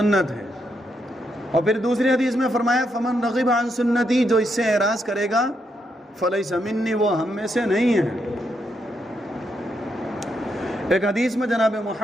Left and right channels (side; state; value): both; normal; correlation 0.79